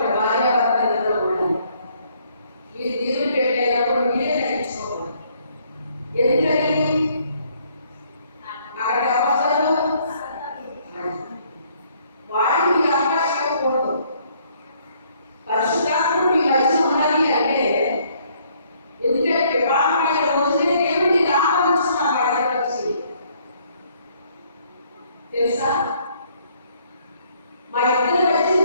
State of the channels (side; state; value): both; inverted; correlation -0.65